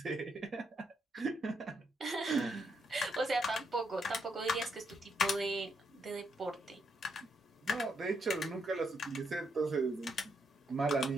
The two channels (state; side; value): normal; both; correlation 0.78